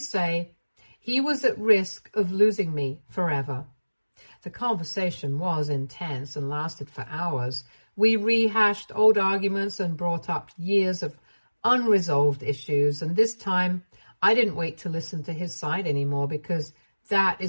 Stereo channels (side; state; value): both; inverted; correlation -1.00